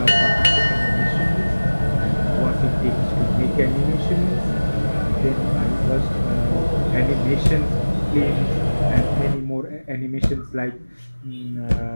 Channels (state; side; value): inverted; both; correlation -1.00